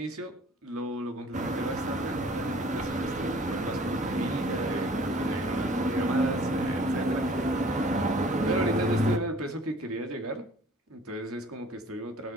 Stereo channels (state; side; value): normal; both; correlation 0.52